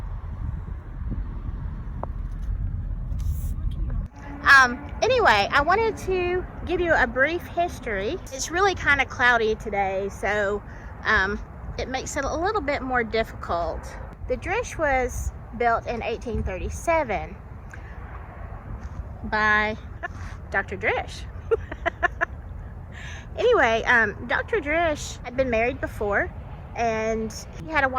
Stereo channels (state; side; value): identical; both; correlation 1.00